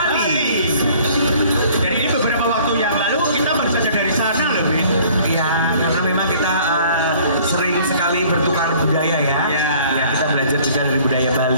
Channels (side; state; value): both; inverted; correlation -0.54